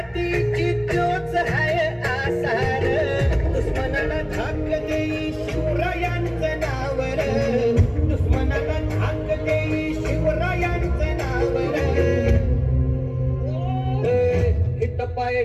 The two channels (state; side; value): identical; both; correlation 1.00